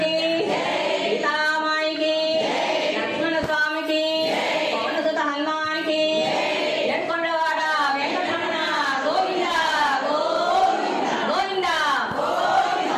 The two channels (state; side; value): identical; both; correlation 1.00